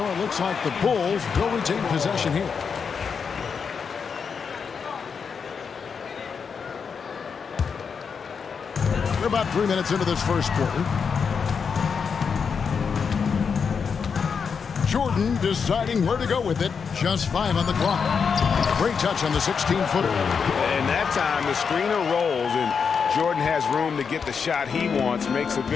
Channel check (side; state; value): right; quieter; 6.1 dB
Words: it looks like the Bulls will retain possession here. We're about 3 minutes into this first quarter. Jordan deciding where to go with it. Just 5 on the clock. Great touch on the 16-footer. And that time, the screener rolls, and Jordan has room to get the shot he wants, makes a